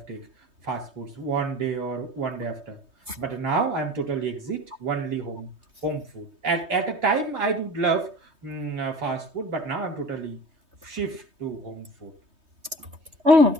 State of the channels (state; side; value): late; left; 3.2 ms